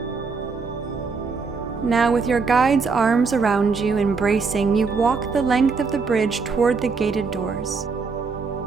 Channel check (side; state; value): left; quieter; 4.8 dB